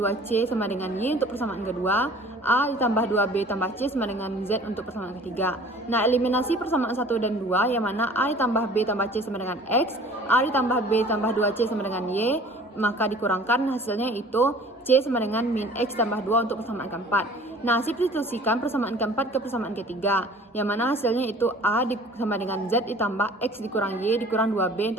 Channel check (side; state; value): both; normal; correlation 0.48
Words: sama dengan Y untuk persamaan kedua, A ditambah 2B tambah C sama dengan Z untuk persamaan ketiga. Nah, eliminasi persamaan 1 dan 2 yang mana A ditambah B tambah C sama dengan X, A ditambah B tambah 2C sama dengan Y, maka dikurangkan hasilnya itu C sama dengan min X tambah 2 untuk persamaan keempat. Nah, substitusikan persamaan keempat ke persamaan ketiga, yang mana hasilnya itu A sama dengan Z ditambah X dikurang Y dikurang 2B